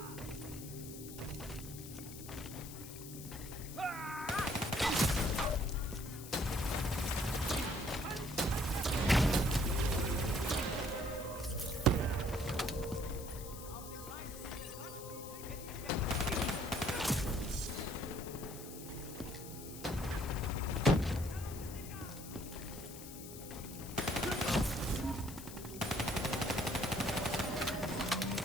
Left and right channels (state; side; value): noise; left; hiss, 13 dB below the sound